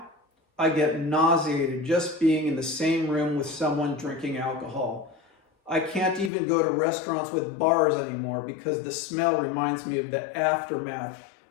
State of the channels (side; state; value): right; drops out; at 6.3 s